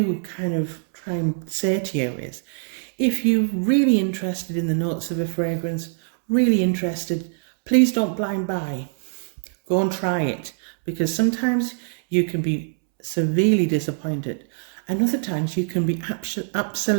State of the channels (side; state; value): left; silent; 63 dB below the other